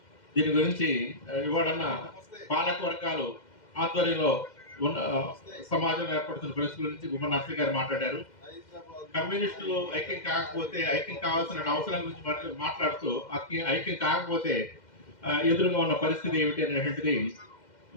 దీని గురించి ఇవాళన్న పాలక వర్గాలు ఆధ్వర్యంలో ఉన్న సమాజం ఏర్పడుతున్న పరిస్థితి గురించి గుమ్మ నర్సయ్య గారు మాట్లాడారు. కమ్యూనిస్టులు ఐక్యం కాకపోతే ఐక్యం కావాల్సిన అవసరం గురించి మాట్లాడుతూ ఐక్యం కాకపోతే ఎదురుగా ఉన్న పరిస్థితి ఏమిటి అనేటువంటిది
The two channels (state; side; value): late; right; 2.1 ms